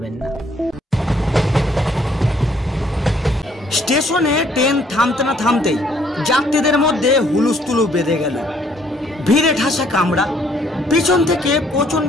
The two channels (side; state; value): both; normal; correlation 0.64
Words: না। স্টেশনে ট্রেন থামতে না থামতেই যাত্রীদের মধ্যে হুলুস্থুলু বেঁধে গেল। ভিড়ে ঠাসা কামরা, পিছন থেকে